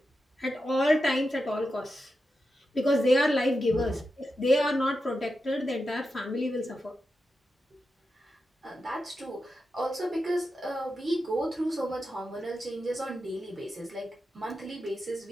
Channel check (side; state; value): both; normal; correlation 0.89